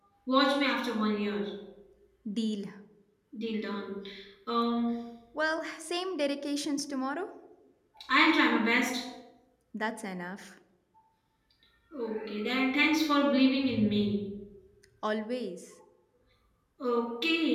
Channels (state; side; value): identical; both; correlation 1.00